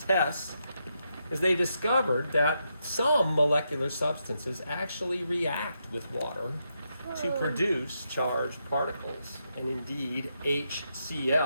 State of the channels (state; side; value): inverted; both; correlation -0.82